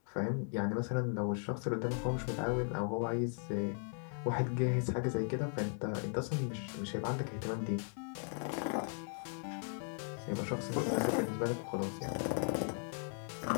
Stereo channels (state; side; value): silent; right; 53 dB below the other